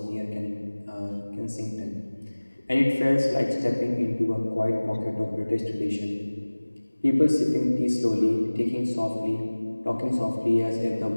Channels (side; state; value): both; inverted; correlation -1.00